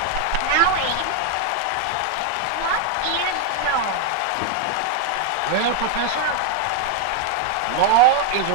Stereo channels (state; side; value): different; both; correlation 0.00